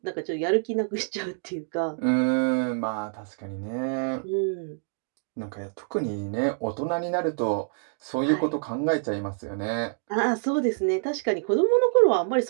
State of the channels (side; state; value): left; silent; digital silence